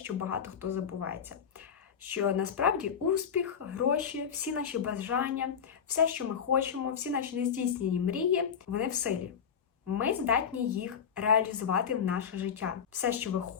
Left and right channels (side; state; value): right; quieter; 7.4 dB